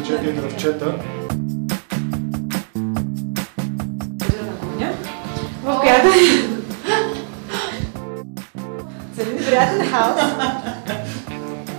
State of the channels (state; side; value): silent; left; digital silence